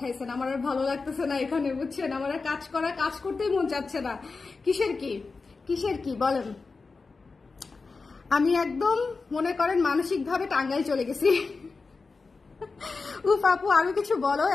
আমার আর ভালো লাগতেছে না এখানে, বুঝছেন? আমার আর কাজ করতেই মন যাচ্ছে না। কিসের কি বলেন? আমি একদম মনে করেন মানসিক ভাবে টাঙ্গাইল চলে গেছি। উফ আপু, আরো কিছু বলো।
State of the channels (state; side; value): quieter; right; 4.2 dB